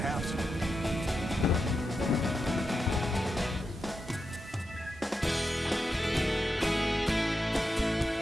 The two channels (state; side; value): normal; both; correlation 0.88